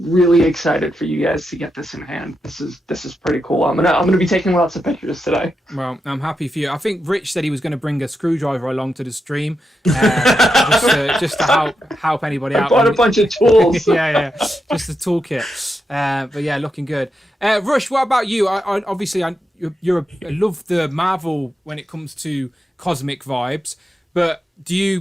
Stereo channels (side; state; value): both; normal; correlation 0.86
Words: excited for you guys to get this in hand. This is pretty cool. I'm gonna be taking lots of pictures today. Well, I'm happy for you. I think Rich said he was going to bring a screwdriver along to the stream, just to help anybody out. I bought a bunch of tools. yeah, just the toolkit. But yeah, looking good. Rush, what about you? I love the Marvel when it comes to cosmic vibes, but do